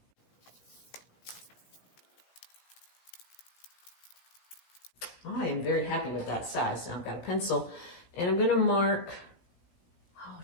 I am very happy with that size. Now I've got a pencil and I'm gonna mark, oh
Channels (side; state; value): right; late; 17 ms